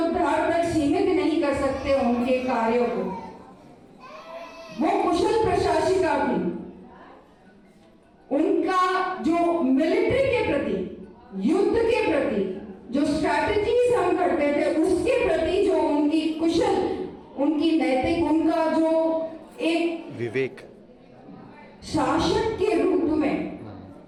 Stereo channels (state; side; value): identical; both; correlation 1.00